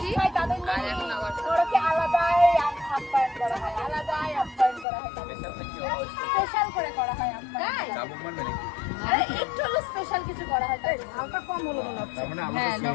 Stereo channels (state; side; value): drops out; right; at 4.9 s